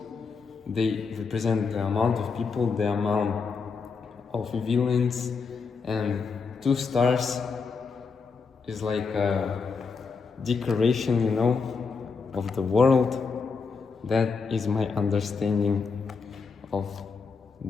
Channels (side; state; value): right; quieter; 5.0 dB